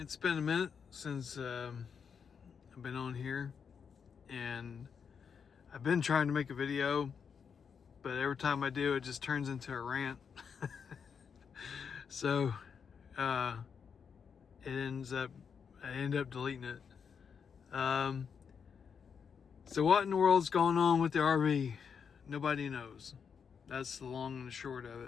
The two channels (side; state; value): right; quieter; 6.6 dB